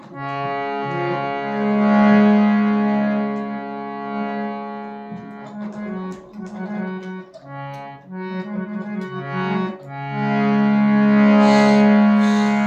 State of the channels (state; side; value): identical; both; correlation 1.00